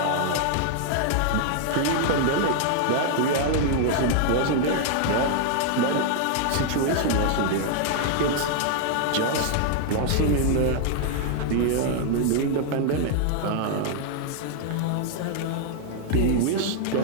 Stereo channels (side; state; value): both; different; correlation 0.00